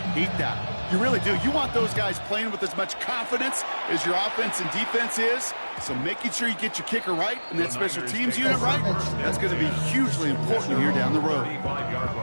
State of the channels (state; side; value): inverted; both; correlation -1.00